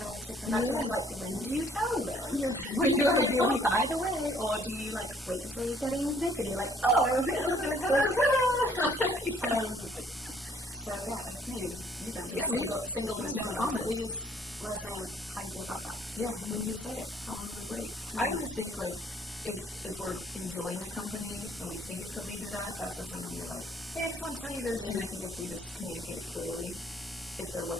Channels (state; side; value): normal; both; correlation 0.62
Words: to take them back to house, like when do you tell them? When do I do it? By the way, or do you like wait until you're getting naked and you're like, oh, so yeah, if you guys are single with stoma, please let us know how you go about that. Yeah, when do you say it? How long do we wait? I always think like if we're enjoying the company and we think it could lead to that, that's the time when you're like, hey, I just want to tell you this, and I think if we just communicate it clearly, if they're